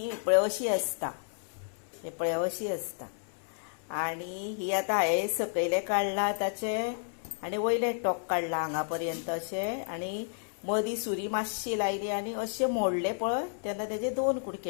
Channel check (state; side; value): silent; right; 57 dB below the other